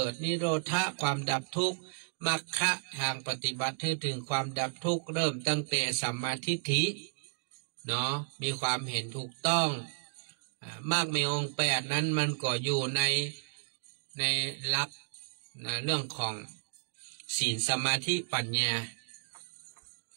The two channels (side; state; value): left; silent; digital silence